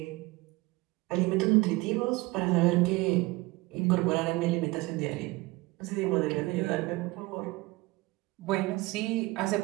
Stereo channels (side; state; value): left; quieter; 21.9 dB